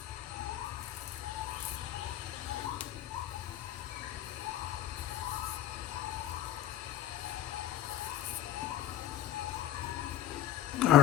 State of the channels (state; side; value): quieter; right; 12.1 dB